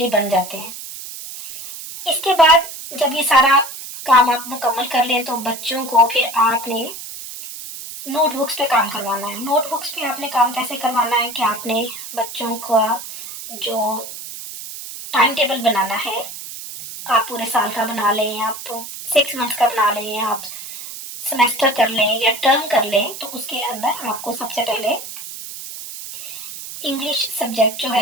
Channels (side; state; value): right; noise; hiss, 11 dB below the sound